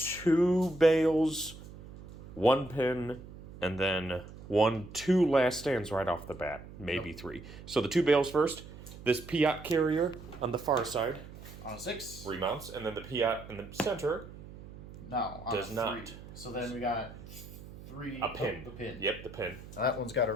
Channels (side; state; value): right; noise; hum, 16 dB below the sound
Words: bales, 1 pin, and then 2 last stands right off the bat. Maybe 3. So the 2 bales first. This Piat carrier on the far side. On a 6. Remounts, and then the Piat in the center. No, on does a 3. not. So then we got 3. A pin. The pin. Yep, the pin. Now that one's got a